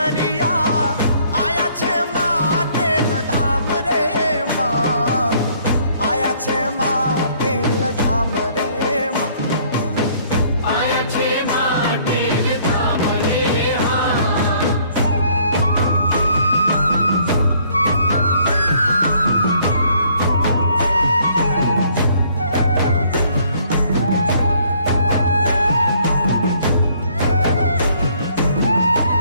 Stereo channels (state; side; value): inverted; both; correlation -0.62